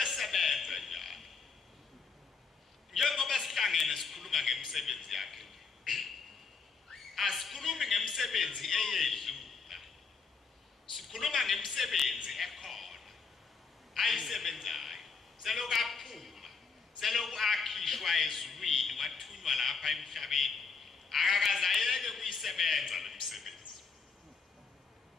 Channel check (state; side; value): quieter; right; 5.2 dB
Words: esebenza njalo njengoba sihlangene sikhuluma ngemisebenzi yakhe asikhulumi ngemisebenzi eyedlula sikhuluma ngemisebenzi ekhona ayisebenzayo selokhu aphuma selokhu akhishwa ezulwini wathunywa lapha emhlabeni akakaze ayeke kuyisebenza lo msebenzi